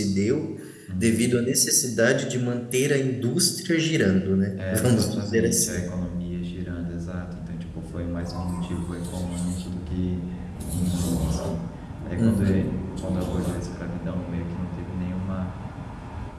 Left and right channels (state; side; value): identical; both; correlation 1.00